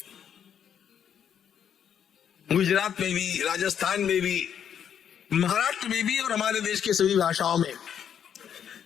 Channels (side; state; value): right; quieter; 8.6 dB